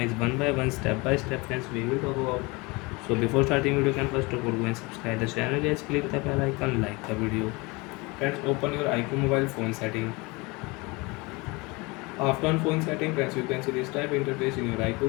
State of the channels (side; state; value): right; quieter; 25.6 dB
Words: one by one, step by step friends we will talk about. So before starting video, can first of all go and subscribe the channel guys, click the bell icon, like the video. Friends, open your iQoo mobile phone setting. After on phone setting friends, you can see this type interface in your